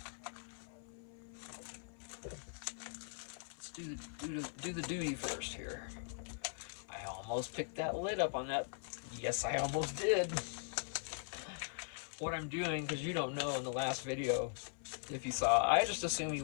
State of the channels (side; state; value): right; silent; 51 dB below the other